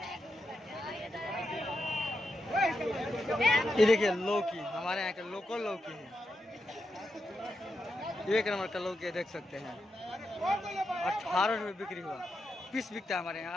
ये देखिए लौकी, हमारे यहाँ के लोकल लौकी है, 1 नंबर का लौकी है, देख सकते हैं। 18 रुपये बिक्री हुआ, पीस बिकता है हमारे यहाँ,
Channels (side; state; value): both; normal; correlation 0.86